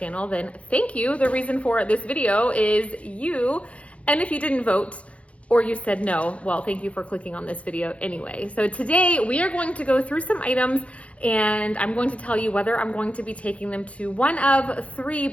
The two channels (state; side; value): late; right; 0.063 ms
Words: then thank you. The reason for this video is you. And if you didn't vote or you said no, well, thank you for clicking on this video anyway. So today we are going to go through some items and I'm going to tell you whether I'm going to be taking them to one of three